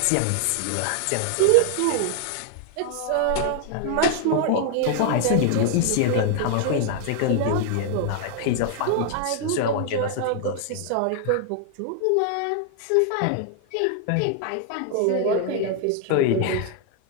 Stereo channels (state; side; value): different; both; correlation 0.00